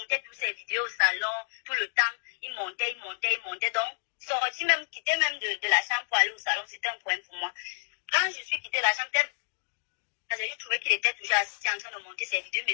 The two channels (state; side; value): silent; right; digital silence